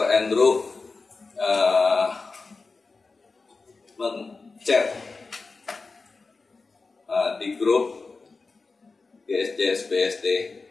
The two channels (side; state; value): right; quieter; 4.0 dB